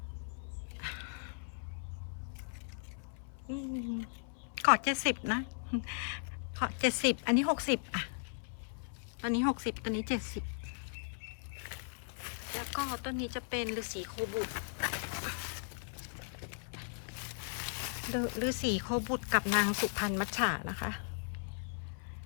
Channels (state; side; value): silent; right; 53 dB below the other